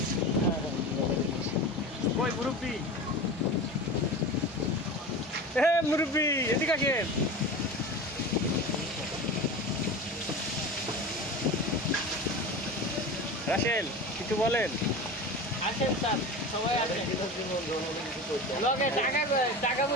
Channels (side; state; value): both; normal; correlation 0.30